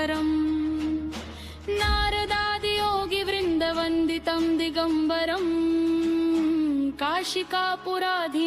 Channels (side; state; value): both; identical; correlation 1.00